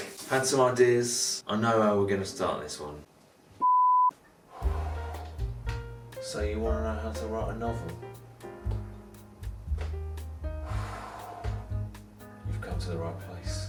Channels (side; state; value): both; identical; correlation 1.00